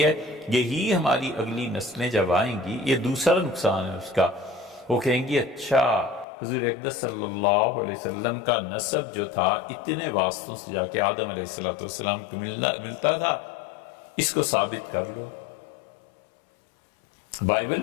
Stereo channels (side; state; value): right; drops out; at 6.2 s